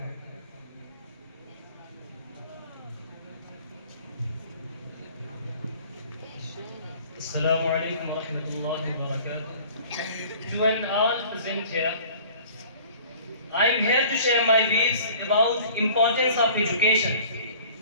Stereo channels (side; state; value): both; inverted; correlation -0.48